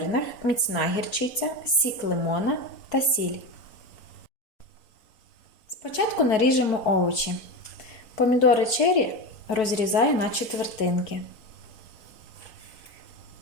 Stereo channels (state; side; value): late; right; 4.2 ms